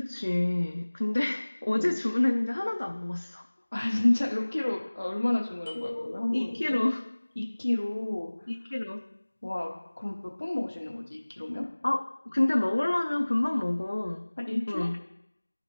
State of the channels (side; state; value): both; inverted; correlation -1.00